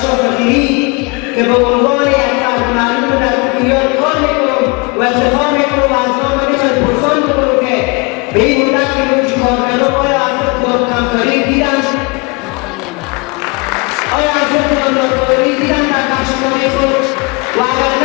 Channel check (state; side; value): quieter; right; 29.8 dB